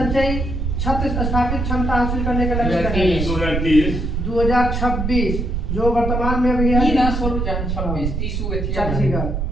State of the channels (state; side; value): noise; right; rumble, 1 dB below the sound